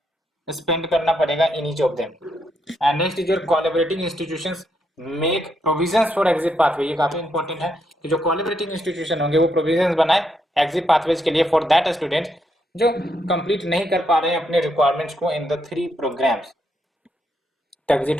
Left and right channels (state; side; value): normal; both; correlation 0.78